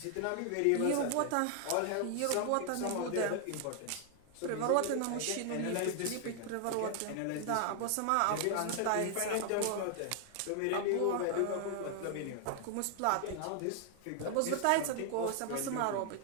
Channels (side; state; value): both; different; correlation 0.00